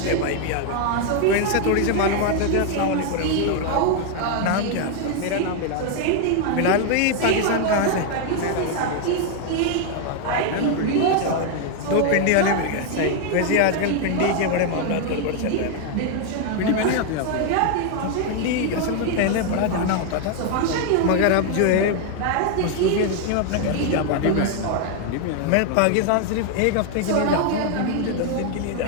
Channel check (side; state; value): both; different; correlation 0.00